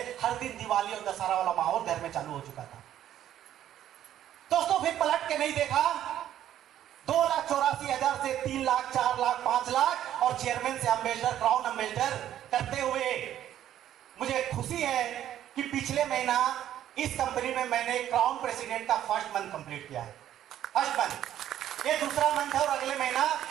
हर दिन दिवाली और दशहरा वाला माहौल घर में चालू हो चुका था। दोस्तों फिर पलट के नहीं देखा, 2,84,000 से 3 लाख, 4 लाख, 5 लाख और चेयरमैन से अम्बेसडर, क्राउन अम्बेसडर करते हुए मुझे खुशी है कि पिछले महीना इस कंपनी में मैंने क्राउन प्रेसिडेंट का फर्स्ट मंथ कंप्लीट किया है। फर्स्ट मंथ, ये दूसरा मंथ है और अगले महीना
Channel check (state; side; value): quieter; left; 11.5 dB